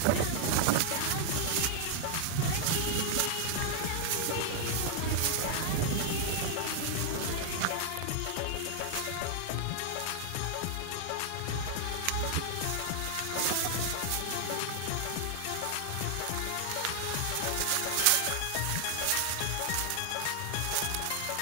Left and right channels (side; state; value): both; different; correlation 0.00